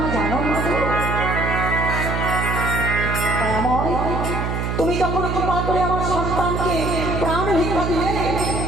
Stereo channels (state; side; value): noise; right; hum, 2 dB below the sound